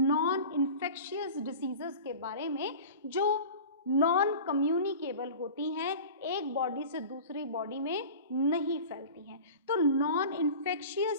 इन्फेक्शियस डिसीजेस के बारे में जो नॉन कम्युनिकेबल होती हैं, एक बॉडी से दूसरी बॉडी में नहीं फैलती हैं. तो non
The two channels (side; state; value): both; inverted; correlation -0.37